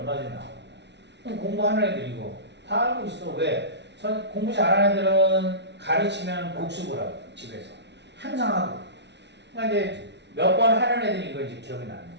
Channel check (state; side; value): late; left; 0.50 ms